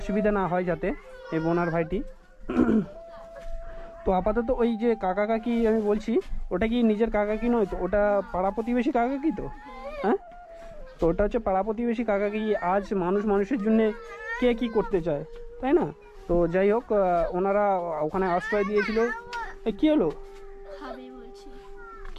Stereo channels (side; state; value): both; identical; correlation 1.00